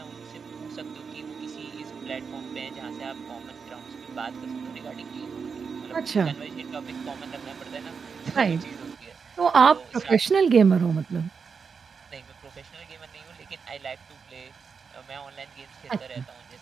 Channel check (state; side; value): quieter; left; 5.7 dB